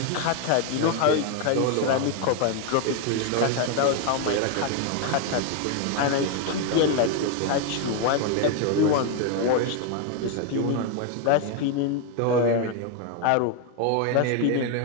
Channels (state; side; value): different; both; correlation 0.01